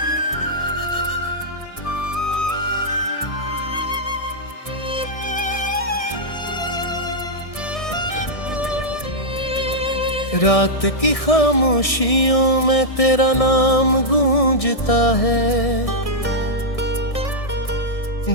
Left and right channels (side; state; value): right; late; 1.6 ms